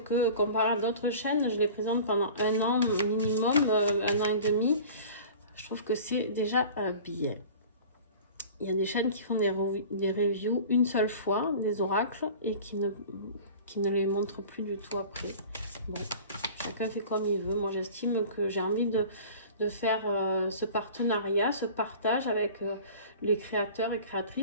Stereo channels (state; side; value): inverted; both; correlation -0.41